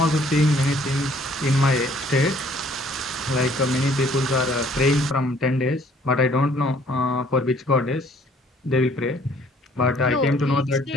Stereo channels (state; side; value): normal; both; correlation 0.60